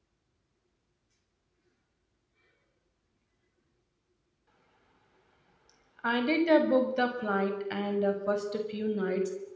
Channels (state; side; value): identical; both; correlation 1.00